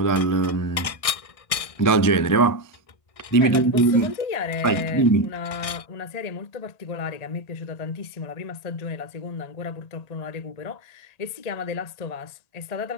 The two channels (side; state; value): right; late; 1.6 ms